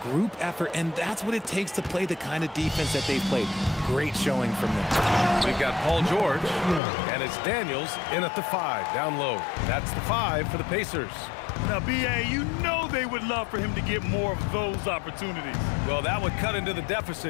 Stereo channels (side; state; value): right; drops out; at 6.8 s